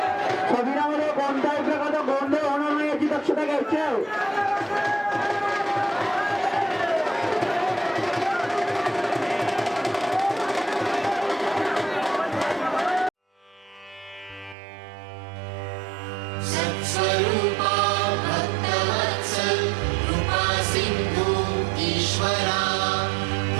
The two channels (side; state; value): left; drops out; at 14.6 s